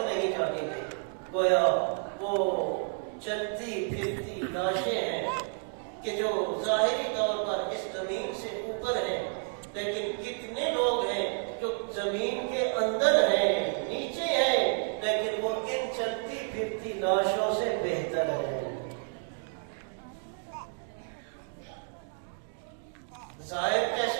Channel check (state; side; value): silent; left; 57 dB below the other